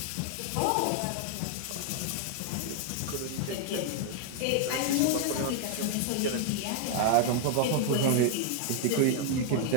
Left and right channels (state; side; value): different; both; correlation 0.00